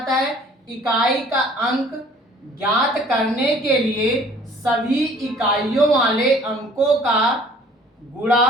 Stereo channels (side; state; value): both; normal; correlation 0.54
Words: है, इकाई का अंक ज्ञात करने के लिए सभी इकाइयों वाले अंकों का गुणा